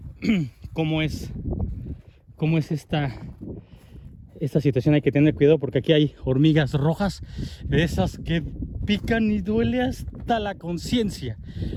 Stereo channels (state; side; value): identical; both; correlation 1.00